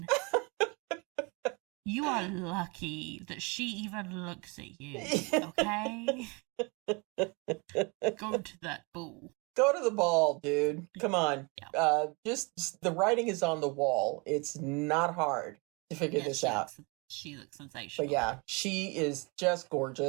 You are lucky that she even looks at you, okay? Go to that ball. Go to the ball, dude. Come on. Yeah. Just the writing is on the wall. It's not hard to figure this out. She looks sensational. But yeah, she is just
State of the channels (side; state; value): left; quieter; 29.6 dB